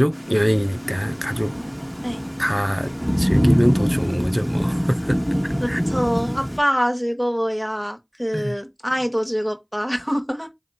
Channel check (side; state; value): both; identical; correlation 1.00